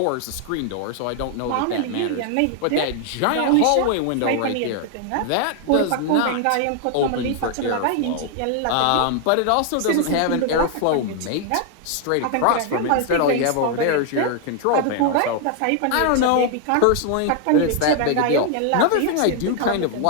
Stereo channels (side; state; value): both; different; correlation 0.00